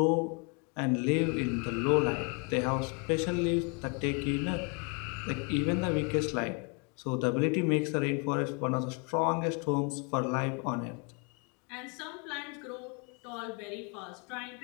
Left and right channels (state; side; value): quieter; right; 34.5 dB